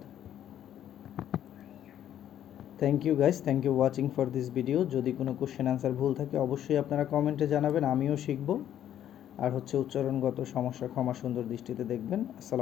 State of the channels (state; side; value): quieter; right; 10.9 dB